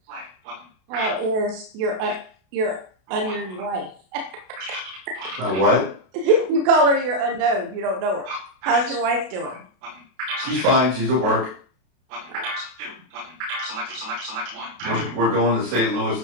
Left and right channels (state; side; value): late; left; 32 ms